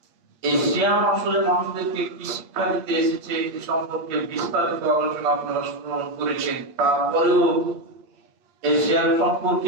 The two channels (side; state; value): left; late; 8.5 ms